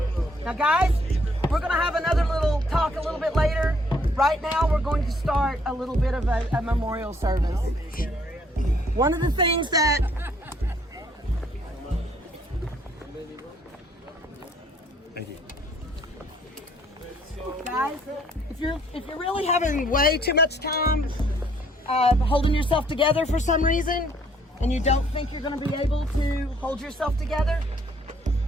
Now, guys, we're going to have another little talk a little bit later. Right now, we're going to start a little bit of a memorial service. One of the things that Thank you. guys, if you're really having way too much time holding yourself together for some reason, and you don't think you're going to be able to hold yourself together,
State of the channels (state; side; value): normal; both; correlation 0.64